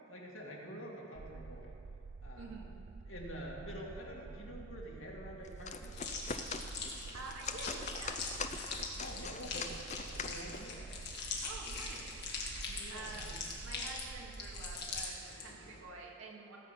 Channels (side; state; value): both; normal; correlation 0.17